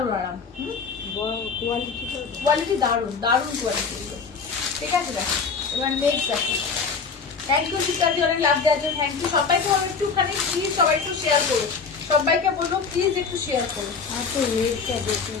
আরাম। কোয়ালিটি দারুণ, দারুণ কোয়ালিটি, ঠিক আছে? দেখো এবার নেক্সট দেখো। থ্যাংক ইউ শিকারি, অনেক লাভ দেওয়ার জন্য থ্যাংক ইউ। সবাইকে বলবো একটুখানি প্লিজ, সবাই একটু শেয়ার করো, সবাইকে বলবো প্লিজ একটু শেয়ার করো।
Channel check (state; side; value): quieter; right; 5.3 dB